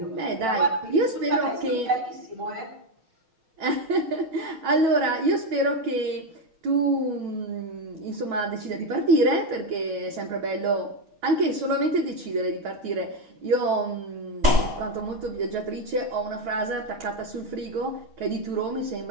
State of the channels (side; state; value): left; late; 6.4 ms